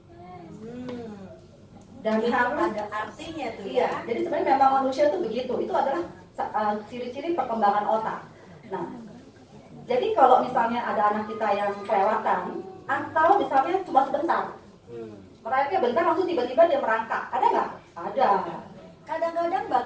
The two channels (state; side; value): identical; both; correlation 1.00